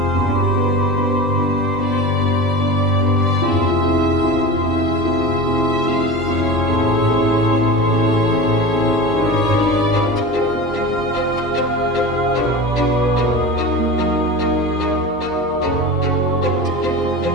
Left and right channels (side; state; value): both; normal; correlation 0.31